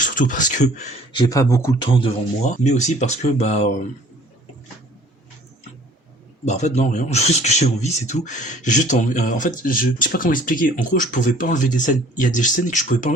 surtout parce que j'ai pas beaucoup de temps devant moi, mais aussi parce que bah en fait non rien, juste que j'ai envie, c'est tout. J'ai juste envie, en fait je sais pas comment expliquer. En gros, je pouvais pas enlever des scènes. Il y a des scènes que je pouvais pas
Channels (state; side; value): normal; both; correlation 0.53